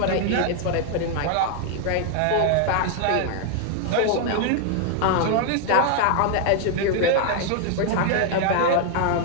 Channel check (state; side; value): different; both; correlation 0.00